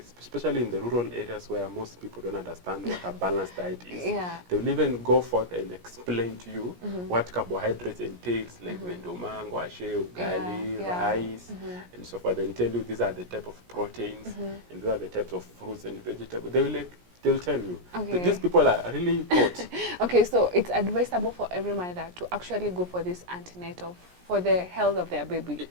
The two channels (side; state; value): left; late; 17 ms